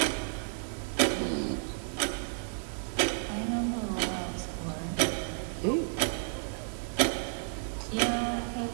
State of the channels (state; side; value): silent; left; 57 dB below the other